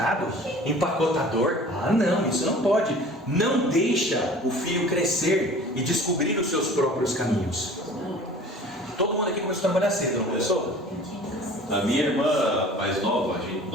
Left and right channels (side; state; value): both; normal; correlation 0.45